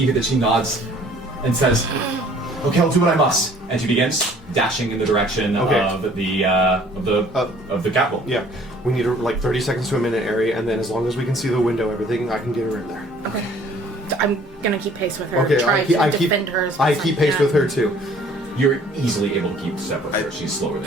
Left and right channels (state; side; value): normal; both; correlation 0.55